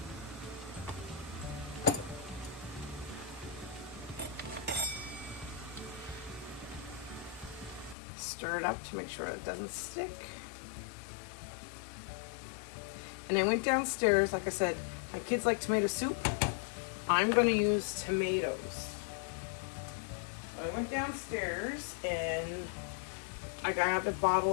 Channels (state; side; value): drops out; right; at 8.0 s